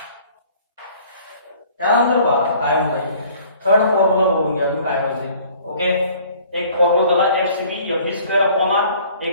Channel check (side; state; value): both; inverted; correlation -0.54